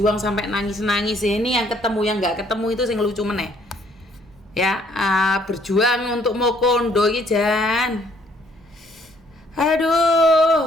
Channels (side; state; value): both; normal; correlation 0.65